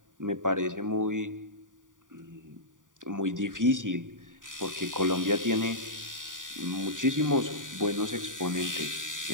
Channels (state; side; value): late; left; 0.88 ms